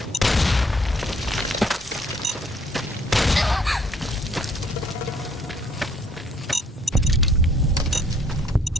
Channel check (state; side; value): normal; both; correlation 0.63